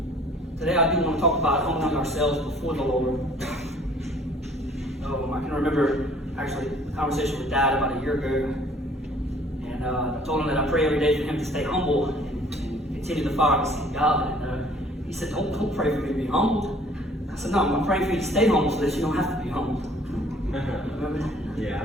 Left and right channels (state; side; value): normal; both; correlation 0.55